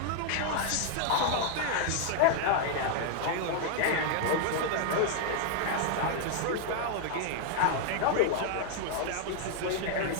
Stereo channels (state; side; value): different; both; correlation 0.00